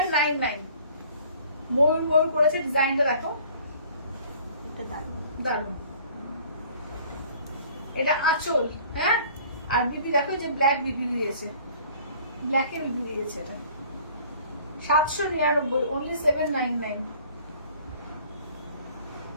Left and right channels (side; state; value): both; inverted; correlation -0.52